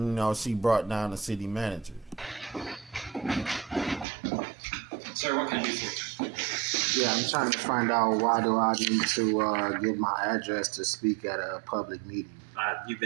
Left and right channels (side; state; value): left; drops out; at 4.0 s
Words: she brought down the city manager. Sir, what can I do for you? Yeah, I'm trying to find out why do I need to give my address to speak at a public meeting. You've